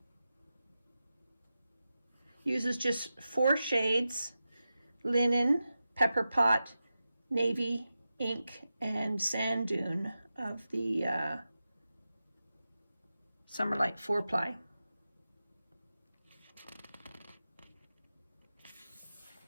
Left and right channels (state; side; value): inverted; both; correlation -0.92